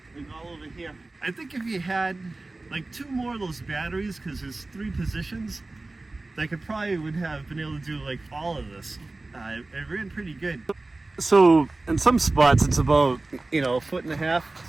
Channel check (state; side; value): quieter; left; 3.2 dB